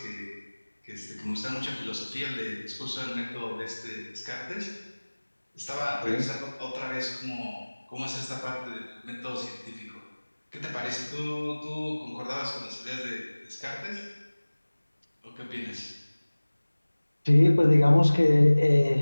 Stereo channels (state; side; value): inverted; both; correlation -1.00